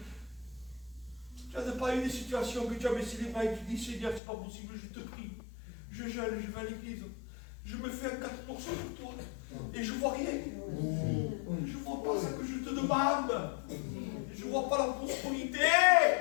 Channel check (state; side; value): drops out; right; at 4.2 s